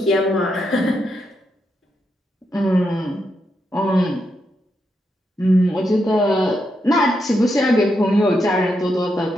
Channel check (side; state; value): both; normal; correlation 0.82